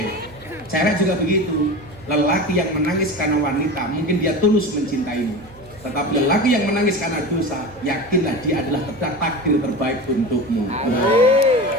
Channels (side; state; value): right; noise; hum, 22 dB below the sound